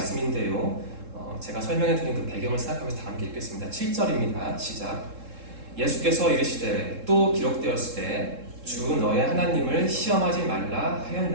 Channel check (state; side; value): late; left; 3.7 ms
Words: 제가 설명해드린 그 배경을 생각하면서 다 함께 읽겠습니다. 7절입니다. 시작. 예수께서 이르시되 또 기록되었을 때 주 너의 하나님을 시험하지 말라